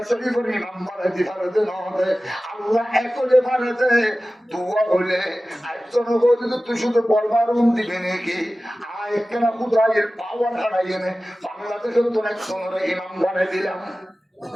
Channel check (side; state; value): both; normal; correlation 0.96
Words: শরীফের ইমাম বানাতে পারে দেনবে আল্লাহ একলে পারেতে দোয়া হলে একজন বলে তুই শুধু পরবারুন দিবি নাকি আয় কেন খুদায়ের পাওয়ার হারাইয়ে নে বাংলাদেশের তো একজনের ইমাম বানাই দিলাম